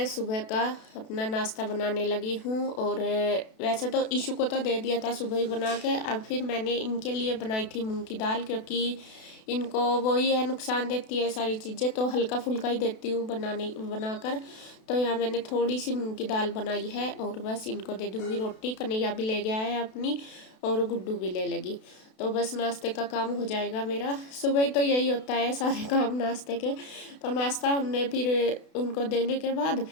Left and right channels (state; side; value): late; right; 32 ms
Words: सुबह का अपना नाश्ता बनाने लगी हूँ। और वैसे तो ईशु को तो दे दिया था सुबह ही बना के। अब फिर मैंने इनके लिए बनाई थी मूंग की दाल, क्योंकि इनको वही है, नुकसान देती है सारी चीज़ें, तो हल्का फुल्का ही देती हूँ बनाकर। तो यहाँ मैंने थोड़ी सी मूंग की दाल बनाई है और बस इनको दे दूँगी रोटी। कन्हैया भी ले गया है अपनी, और गुड्डू भी ले लेगी। तो बस नाश्ते का काम हो जाएगा मेरा। सुबह ही तो यही होता है, सारे काम नाश्ते के। तो नाश्ता हमने फिर उनको देने के बाद